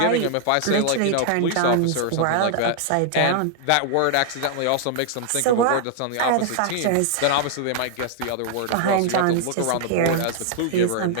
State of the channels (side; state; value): both; different; correlation 0.00